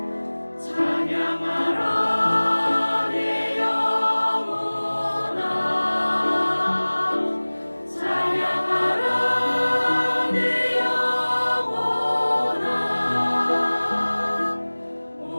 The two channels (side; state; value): both; inverted; correlation -1.00